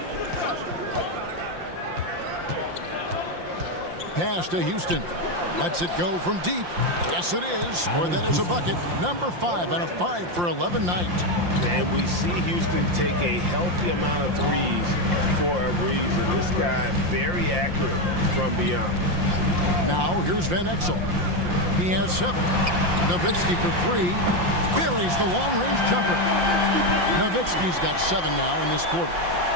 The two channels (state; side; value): late; left; 5.7 ms